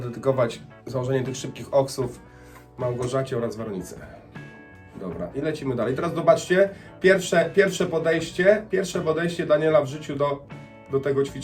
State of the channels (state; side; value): identical; both; correlation 1.00